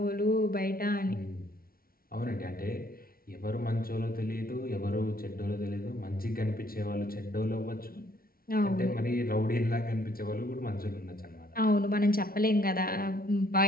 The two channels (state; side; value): late; right; 0.43 ms